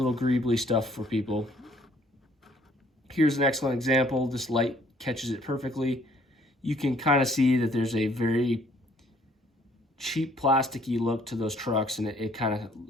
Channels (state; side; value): normal; both; correlation 0.61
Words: greebly stuff for people. Here's an excellent example. This light catches it perfectly. You can kind of see that there's a very cheap plasticky look to those trucks, and it kind of